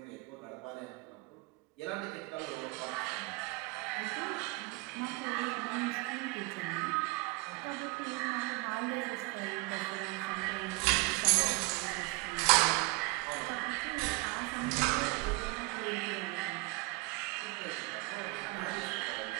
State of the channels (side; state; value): left; quieter; 24.3 dB